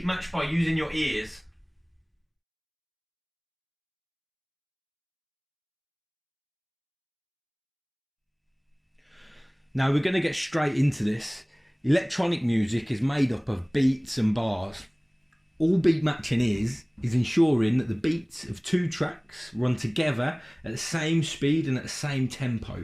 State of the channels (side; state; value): both; identical; correlation 1.00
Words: match by using your ears. Now we're going to get straight into this. Electronic music is made up of beats and bars. All beat matching is ensuring that the beats of two tracks run together at the same speed and at the same